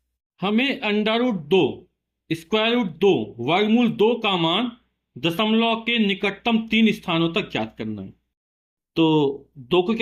हमें अंडर रूट दो, स्क्वायर रूट दो, वर्गमूल दो का मान दशमलव के निकटतम तीन स्थानों तक ज्ञात करना है। तो दो को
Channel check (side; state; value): both; identical; correlation 1.00